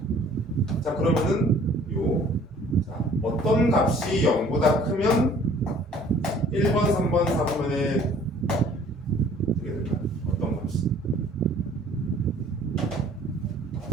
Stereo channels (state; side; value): normal; both; correlation 0.54